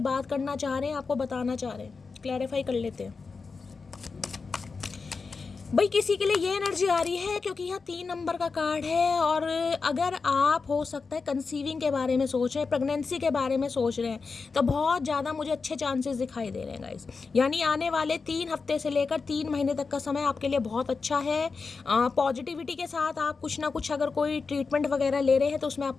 बात करना चाह रहे हैं, आपको बताना चाह रहे हैं। क्लैरिफाई कर लेते हैं भाई। किसी के लिए ये एनर्जी आ रही है क्योंकि यहाँ 3 नंबर का कार्ड है। और अगर आप हो सकता है कंसीविंग के बारे में सोच रहे हैं, प्रेगनेंसी के बारे में सोच रहे हैं, तो बहुत ज़्यादा मुझे अच्छे चांसेस दिखाई दे रहे हैं गाइस। यानी आने वाले 3 हफ्ते से लेकर 3 महीने तक का समय आपके लिए बहुत अच्छा है। पॉजिटिविटी के साथ आप कुछ ना कुछ अगर कोई ट्रीटमेंट वगैरह ले रहे हैं तो उसमें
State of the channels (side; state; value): right; quieter; 4.7 dB